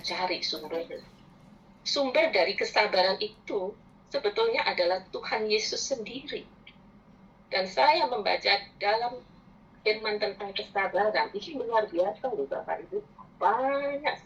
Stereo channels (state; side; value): identical; both; correlation 1.00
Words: cari sumbernya? Sumber dari kesabaran itu sebetulnya adalah Tuhan Yesus sendiri. Dan saya membaca dalam firman tentang kesabaran, ini luar biasa loh Bapak Ibu, banyak